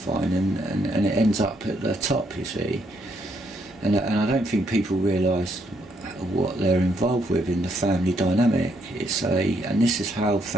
and it ends up at the top, you see. And I don't think people realise what they're involved with in the family dynamic. And this is how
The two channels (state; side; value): normal; both; correlation 0.74